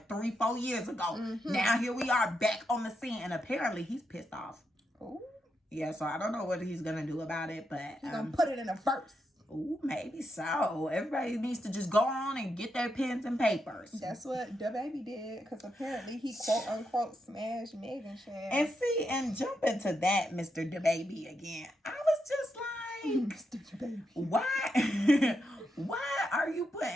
3-4 years ago. Now here we are back on the scene, and apparently he's pissed off. Ooh. Yeah, so I don't know what he's gonna do about it, but he's gonna put it in a verse. Ooh, maybe so. Everybody needs to just go on and get their pens and papers. That's what the baby did, because apparently he quote unquote smashed Megan Chan. And see, and jump into that, Mr. DaBaby again. I was just like, Mr. DaBaby, why? Why are you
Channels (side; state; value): both; normal; correlation 0.83